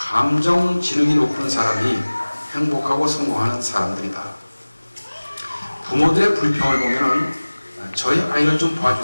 지능이 높은 사람이 행복하고 성공하는 사람들이다. 부모들의 불평을 보면은 저희 아이를 좀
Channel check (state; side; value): inverted; both; correlation -1.00